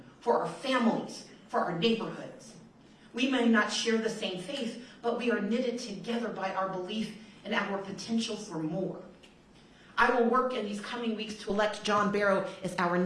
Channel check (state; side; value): identical; both; correlation 1.00